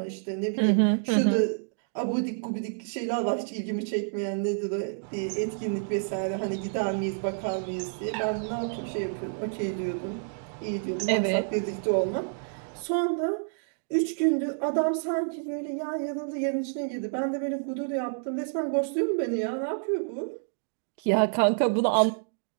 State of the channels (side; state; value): left; silent; digital silence